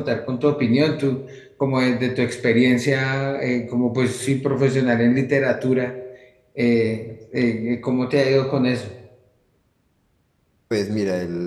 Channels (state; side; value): identical; both; correlation 1.00